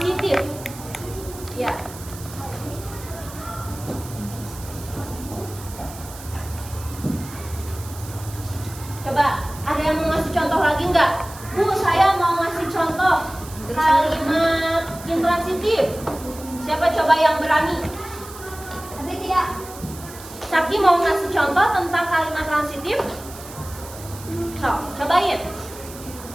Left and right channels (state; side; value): noise; right; hiss, 16 dB below the sound